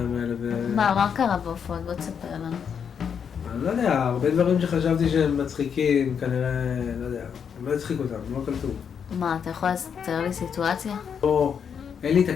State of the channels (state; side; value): quieter; right; 7.3 dB